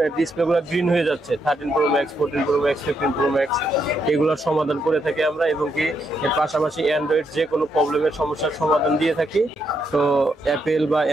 ডিসপ্লেগুলো গ্রিন হয়ে যাচ্ছে, 13 Pro Max, 14 Pro Max, 15 Pro Max, এগুলোর সমাধান করে থাকি আমরা। এবং কি এর পাশাপাশি অ্যান্ড্রয়েড যে কোনো প্রবলেমের সমস্যার সমাধান দিয়ে থাকি। তো অ্যাপেল বা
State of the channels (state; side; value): normal; both; correlation 0.78